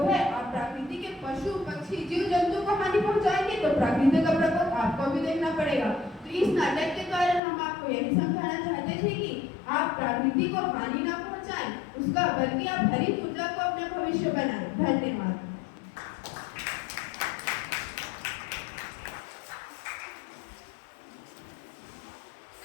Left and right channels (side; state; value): right; drops out; at 7.4 s